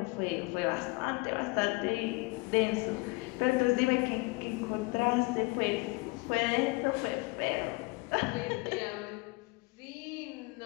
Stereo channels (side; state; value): right; quieter; 26.4 dB